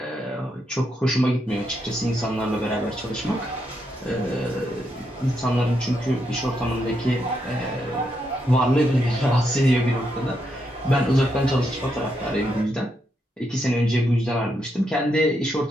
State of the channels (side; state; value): both; normal; correlation 0.80